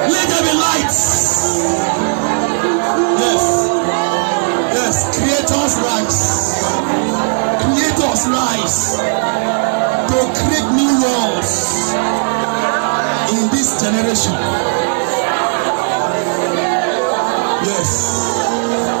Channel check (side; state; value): left; silent; digital silence